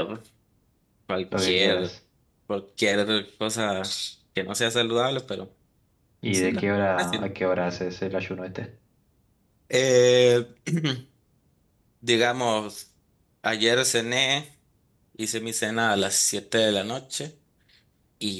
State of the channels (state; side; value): identical; both; correlation 1.00